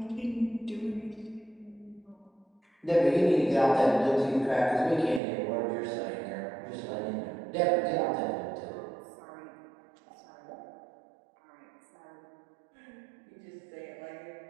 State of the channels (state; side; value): drops out; left; at 5.2 s